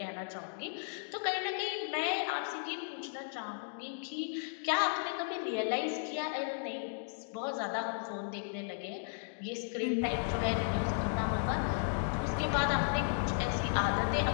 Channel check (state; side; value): silent; right; digital silence